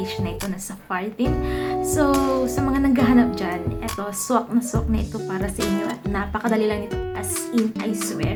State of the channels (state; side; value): identical; both; correlation 1.00